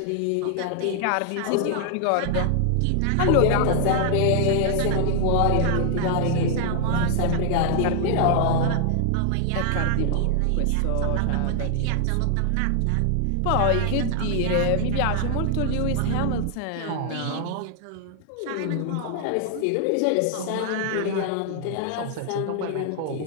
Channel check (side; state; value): both; different; correlation 0.00